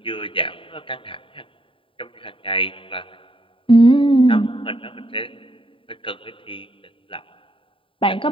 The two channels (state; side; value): late; right; 0.25 ms